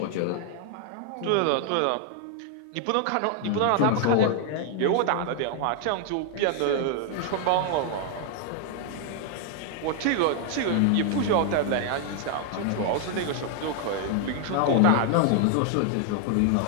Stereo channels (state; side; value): different; both; correlation 0.00